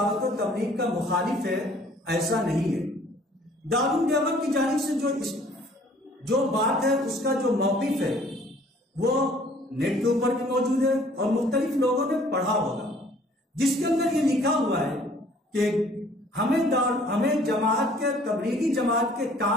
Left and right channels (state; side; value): normal; both; correlation 0.56